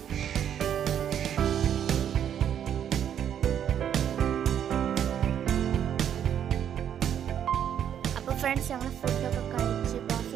അപ്പോൾ ഫ്രണ്ട്സ്, ഞങ്ങൾ ഫുഡൊക്കെ കഴിച്ച് ഇപ്പോൾ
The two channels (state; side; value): quieter; left; 9.4 dB